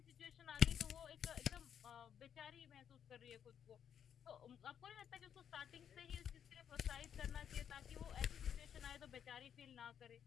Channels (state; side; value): quieter; right; 8.6 dB